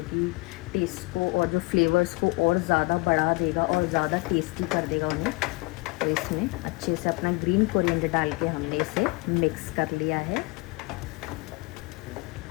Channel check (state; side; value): quieter; right; 25.9 dB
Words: कि टेस्ट को और जो फ्लेवर्स को और ज़्यादा बढ़ा देगा और ज़्यादा टेस्टी कर देगा उन्हें। तो इसमें अच्छे से अपना ग्रीन कोरिएंडर डाल के हमने इसे मिक्स कर लिया है।